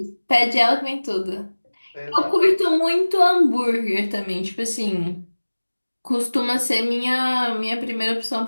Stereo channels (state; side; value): inverted; both; correlation -1.00